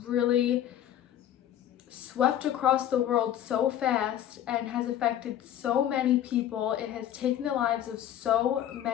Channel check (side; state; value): right; quieter; 11.2 dB